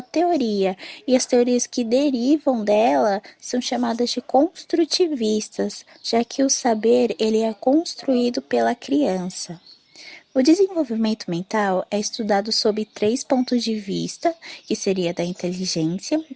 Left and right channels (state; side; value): identical; both; correlation 1.00